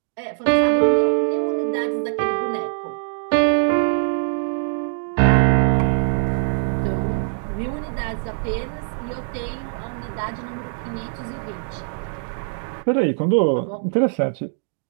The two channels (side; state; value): left; silent; digital silence